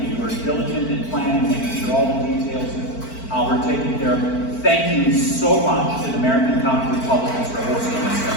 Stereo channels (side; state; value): right; late; 4.5 ms